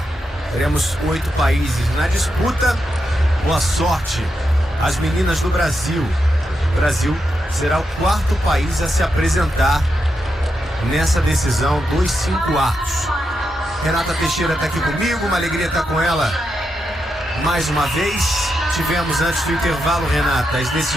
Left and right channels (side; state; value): both; normal; correlation 0.85